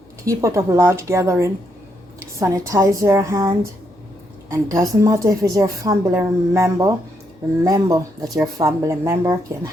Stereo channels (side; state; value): both; normal; correlation 0.77